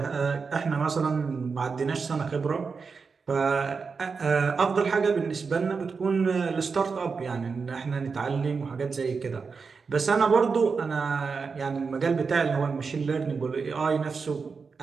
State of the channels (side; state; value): left; quieter; 5.1 dB